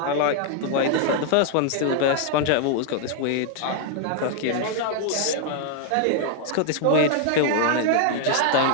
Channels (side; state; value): both; different; correlation 0.00